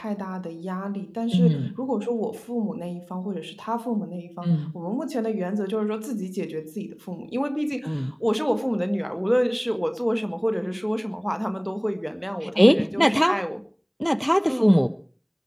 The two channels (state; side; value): identical; both; correlation 1.00